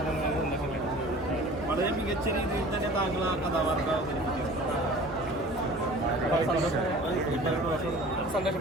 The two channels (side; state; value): right; noise; hum, 17 dB below the sound